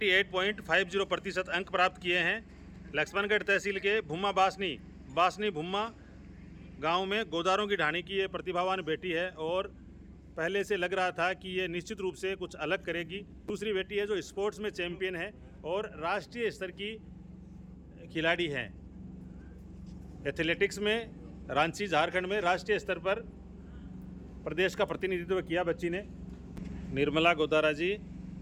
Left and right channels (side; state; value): both; identical; correlation 1.00